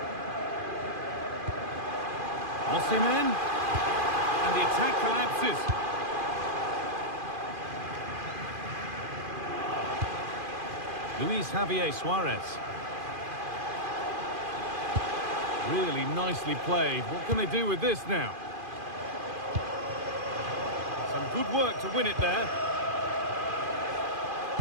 Osimhen. And the attack collapses. Luis Javier Suarez. Really nicely played. What can they do with this now? Some good work to win it there.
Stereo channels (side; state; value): left; late; 2.5 ms